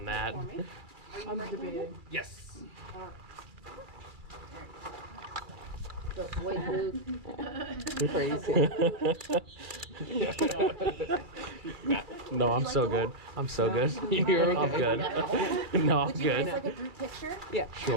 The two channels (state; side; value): late; left; 2.4 ms